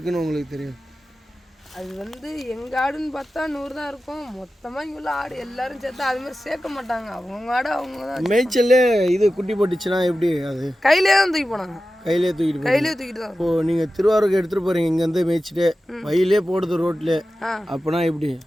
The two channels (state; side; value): normal; both; correlation 0.94